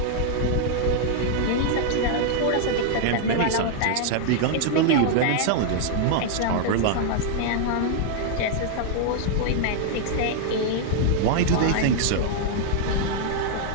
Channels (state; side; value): different; both; correlation -0.01